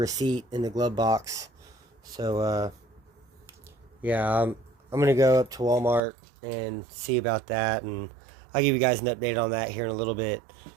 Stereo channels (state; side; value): drops out; left; at 6.0 s